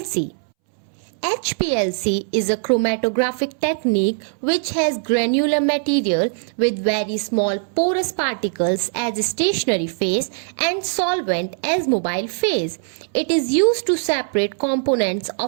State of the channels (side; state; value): left; silent; 65 dB below the other